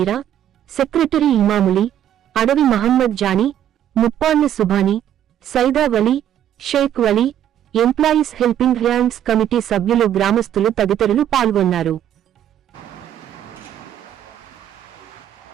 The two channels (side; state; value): left; quieter; 10.7 dB